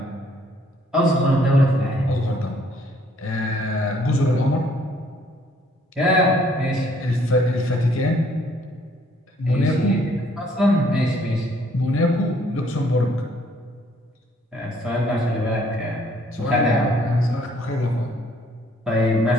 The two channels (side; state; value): both; normal; correlation 0.64